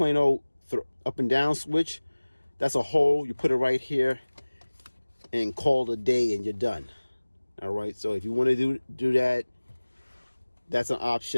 old up and down switch, that's a hole. You put it right here and call it a day, and you're done. All right, so if you want to do that, that's an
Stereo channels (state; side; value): inverted; both; correlation -1.00